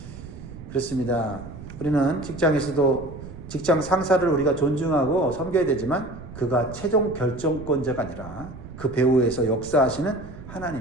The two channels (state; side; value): noise; right; rumble, 14 dB below the sound